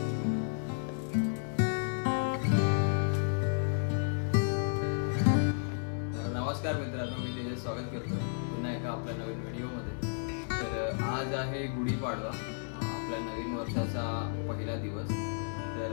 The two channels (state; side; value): silent; right; digital silence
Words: नमस्कार मित्रांनो, मी त्याचे स्वागत करतो पुन्हा एका आपल्या नवीन व्हिडिओमध्ये. तर आज आहे गुढीपाडवा, आपल्या नवीन वर्षाचा पहिला दिवस.